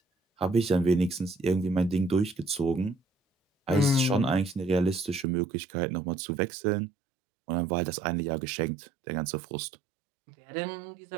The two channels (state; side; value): drops out; left; at 5.2 s